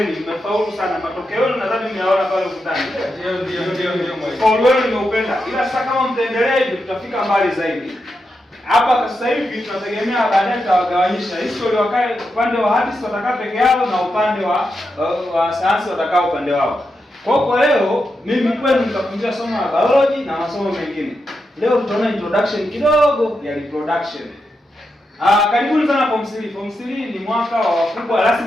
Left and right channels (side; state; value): both; normal; correlation 0.86